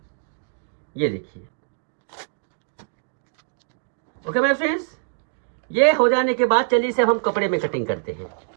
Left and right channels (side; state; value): left; silent; digital silence